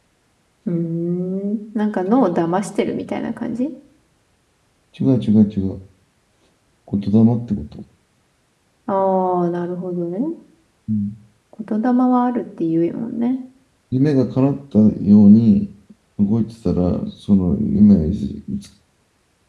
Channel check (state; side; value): identical; both; correlation 1.00